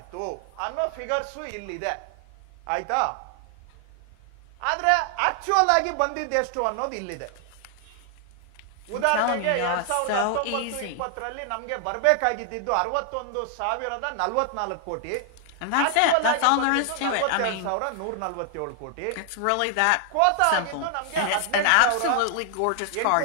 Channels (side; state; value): both; different; correlation 0.00